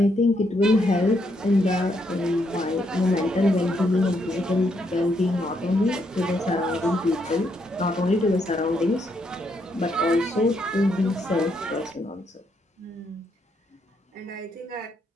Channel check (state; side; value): normal; both; correlation 0.76